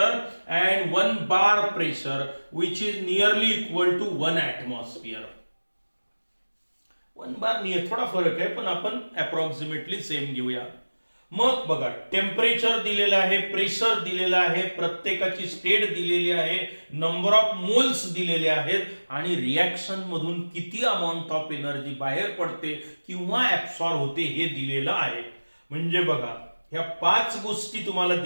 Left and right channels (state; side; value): inverted; both; correlation -1.00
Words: and 1 bar pressure which is nearly equal to 1 atmosphere. 1 bar नाही, थोडा फरक आहे पण आपण अप्रॉक्सिमेटली सेम घेऊया. मग बघा टेम्परेचर दिलेलं आहे, प्रेशर दिलेलं आहे, प्रत्येकाची स्टेट दिलेली आहे, नंबर ऑफ मोल्स दिलेले आहेत आणि रिएक्शन मधून किती अमाऊंट ऑफ एनर्जी बाहेर पडते किंवा ऍब्सॉर्ब होते हे दिलेलं आहे. म्हणजे बघा ह्या 5 गोष्टी तुम्हाला